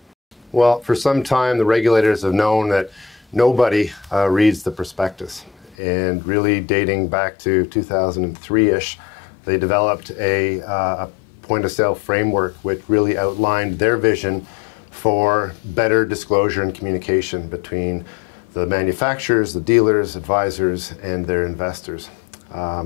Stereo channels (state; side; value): drops out; right; at 5.8 s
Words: Well, for some time, the regulators have known that nobody reads the prospectus. And really dating back to 2003-ish, they developed a point-of-sale framework which really outlined their vision for better disclosure and communication between the manufacturers, the dealers, advisors, and their investors.